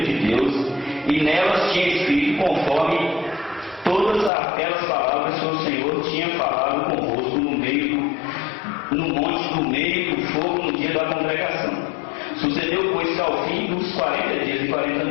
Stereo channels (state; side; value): drops out; right; at 4.3 s